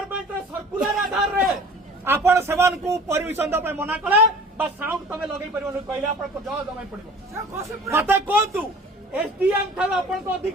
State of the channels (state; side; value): normal; both; correlation 0.45